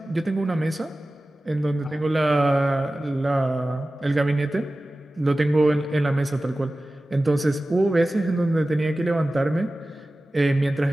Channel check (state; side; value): normal; both; correlation 0.96